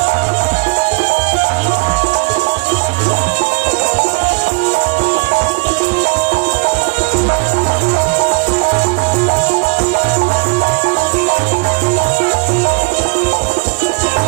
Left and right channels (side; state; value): left; quieter; 29.5 dB